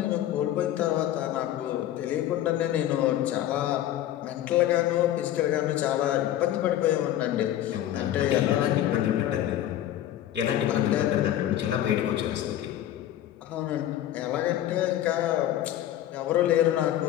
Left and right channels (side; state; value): right; quieter; 12.5 dB